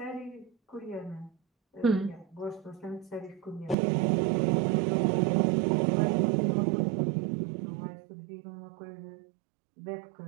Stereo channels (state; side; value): drops out; left; at 3.8 s